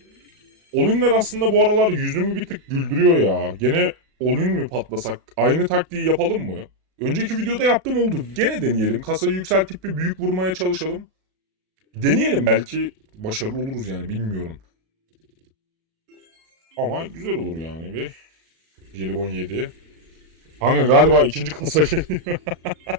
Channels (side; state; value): left; late; 37 ms